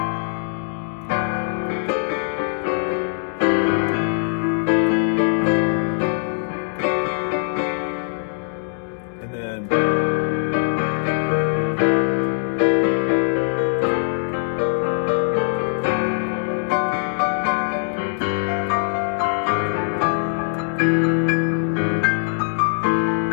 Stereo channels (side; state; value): right; silent; digital silence